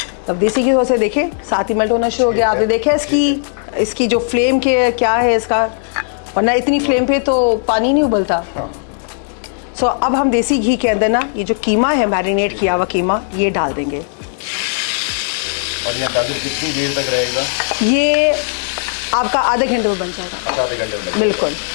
अब देसी घी से देखें साथ ही मेल्ट होना शुरू हो गया। आपने देखा इसकी जो फ्लेम के क्या है इसका, वरना इतनी फ्लेम पे तो पानी नहीं उबलता। सो अब हम देसी घी के अंदर ना ये जो कीमा है, मैरिनेट किया हुआ कीमा, ये डाल देंगे। और ये अंदाज़ा कितनी देर तक रहेगा? ये आपका आधे घंटे में बन जाएगा। अच्छा, आधे घंटे में? बिल्कुल।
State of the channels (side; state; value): right; silent; digital silence